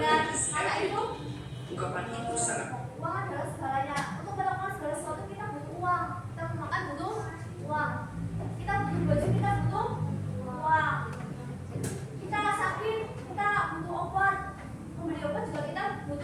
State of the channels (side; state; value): both; identical; correlation 1.00